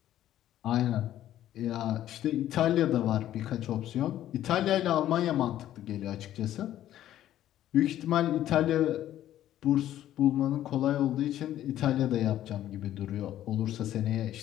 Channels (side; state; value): right; quieter; 12.5 dB